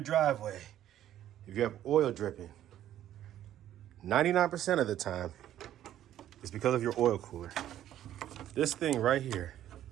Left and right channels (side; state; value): left; quieter; 12.0 dB